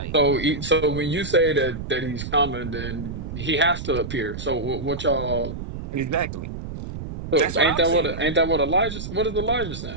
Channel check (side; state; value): right; noise; rumble, 8 dB below the sound